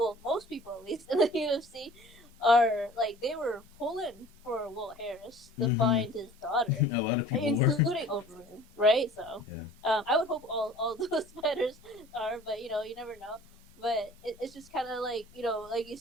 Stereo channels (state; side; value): normal; both; correlation 0.47